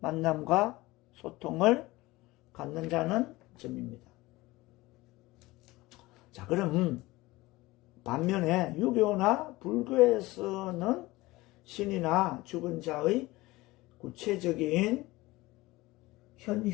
소통을 갖는다는 점입니다. 자, 그럼 반면에 유교나 불교에서는 신이나 죽은 자의 구체적인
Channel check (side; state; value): right; quieter; 20.0 dB